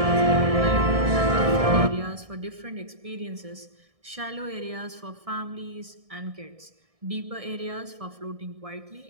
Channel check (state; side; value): late; left; 1.6 ms